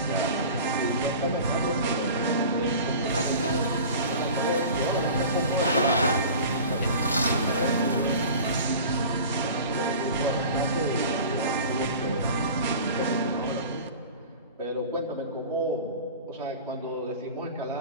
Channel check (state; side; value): inverted; both; correlation -0.38